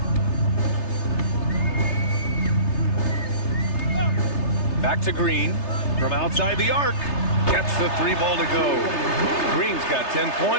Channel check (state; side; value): late; right; 3.3 ms